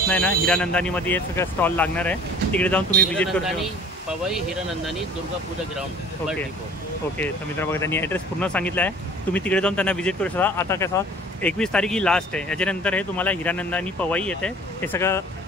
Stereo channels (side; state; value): both; normal; correlation 0.48